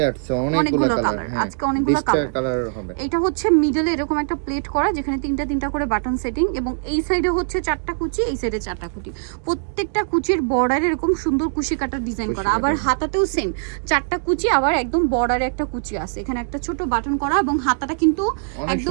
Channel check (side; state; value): left; silent; digital silence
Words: আসছে অনেকগুলো কালার, আজকে অনেকগুলো কালার হবে। এটা হচ্ছে মিডলে এরকম একটা প্লেট করা, যেখানে তিনটা করে বাটন সেটিং, এবং এই সাইডে হচ্ছে 4টা কুচি, এই সাইডে 4টা কুচি। প্রত্যেকটা কুচির বর্ডারে এরকম সুন্দর কুশি কাটার ডিজাইন করা, আবার হাতাতেও সেম 4টা কুচি, আবার একদম বর্ডারে একটা কুচি আছে। এখানে একটা ছোট বাটন করা, এবং হাতাটা কিন্তু